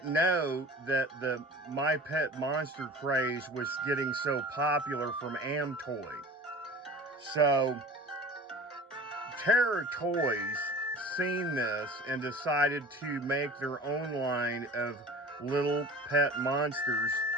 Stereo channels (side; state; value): both; normal; correlation 0.40